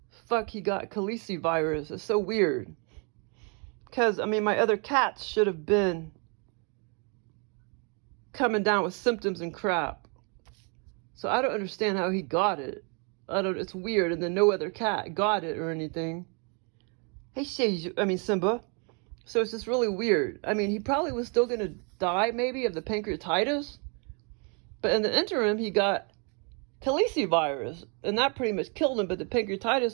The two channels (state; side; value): quieter; left; 36.1 dB